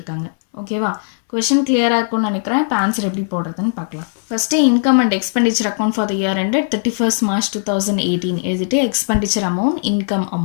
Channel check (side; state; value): right; silent; 67 dB below the other